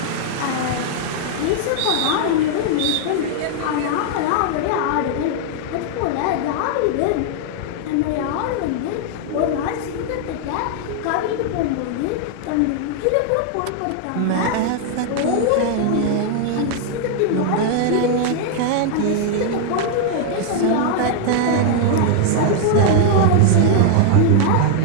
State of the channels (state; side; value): different; both; correlation 0.00